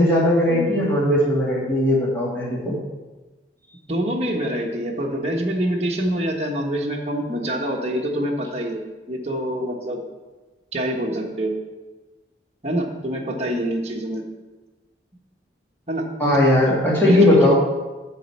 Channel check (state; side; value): normal; both; correlation 0.53